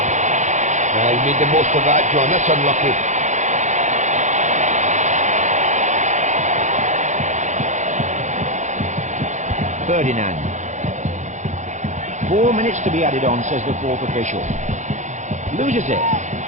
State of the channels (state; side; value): late; left; 0.35 ms